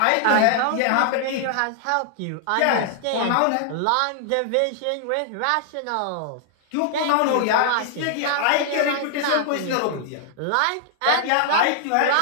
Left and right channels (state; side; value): different; both; correlation -0.01